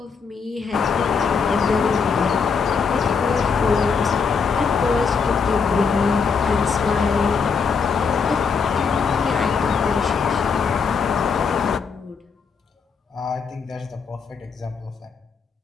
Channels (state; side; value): quieter; right; 5.6 dB